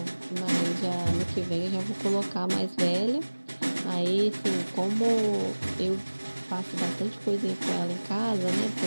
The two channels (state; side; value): inverted; both; correlation -1.00